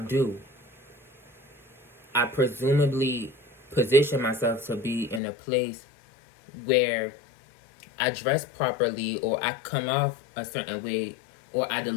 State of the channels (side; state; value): right; drops out; at 5.2 s